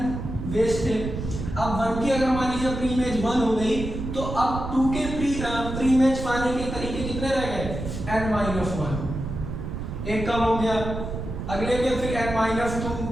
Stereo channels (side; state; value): right; noise; rumble, 6 dB below the sound